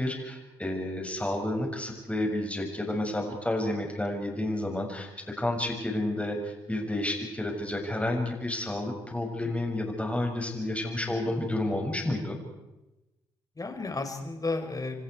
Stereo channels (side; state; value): both; normal; correlation 0.79